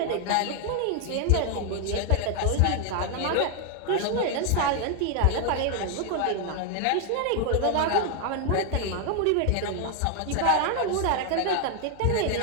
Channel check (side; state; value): both; different; correlation 0.00